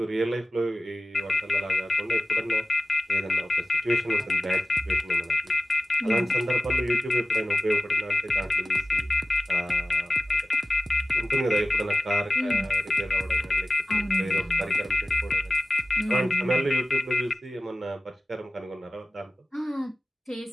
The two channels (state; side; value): normal; both; correlation 0.95